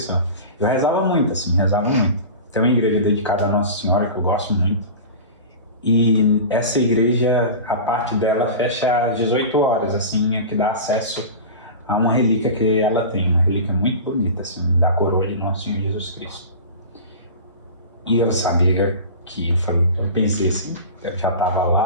Eu rezava muito, assim, Tem uma igreja dedicada a Nossa Senhora que eu gosto muito. E essa igreja, a parte dela fecha às 18 horas, assim, que dá acesso a uma relíquia que ela tem. Uma relíquia muito bonita, assim, da coroa de Nosso Senhor Jesus Cristo. E eu sabia que, eu pensei assim, eu já estava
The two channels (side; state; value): both; inverted; correlation -0.32